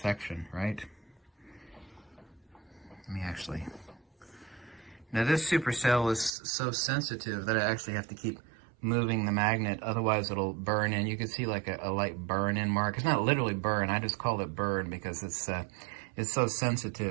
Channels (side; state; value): left; drops out; at 6.3 s